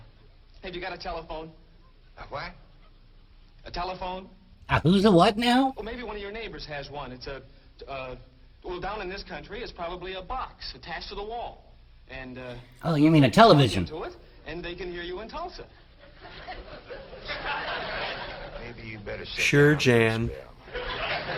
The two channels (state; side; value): identical; both; correlation 1.00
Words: Have you got a telephone? A what? A telephone? Who's a what now? Well, maybe one of your neighbors has one. It's well, down in this country, it's probably a box attached to the wall. And, Oh, you mean a television? into it, and they can hear you in Tulsa. Maybe you better sit Sure, down Jan. for a